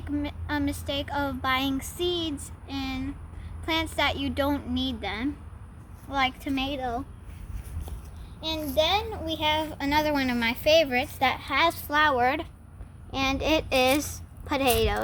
a mistake of buying seeds in plants that you don't need them, like tomato. And then we have another one of my favorites that has flowered, and it is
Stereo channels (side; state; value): both; identical; correlation 1.00